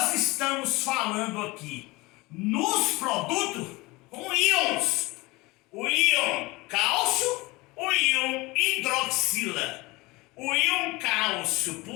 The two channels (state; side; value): quieter; right; 22.7 dB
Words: estamos falando aqui nos produtos com íons. O íon cálcio, o íon hidroxila. O íon cálcio